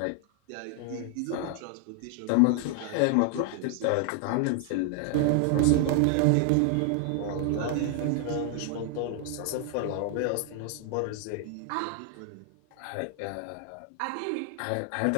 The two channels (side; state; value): both; different; correlation 0.00